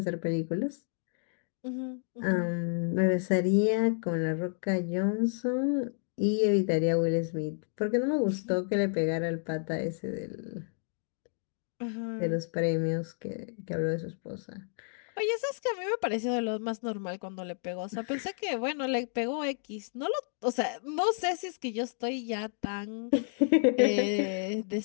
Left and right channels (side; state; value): right; silent; 57 dB below the other